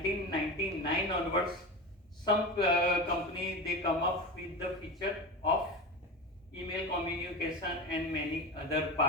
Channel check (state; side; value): normal; both; correlation 0.25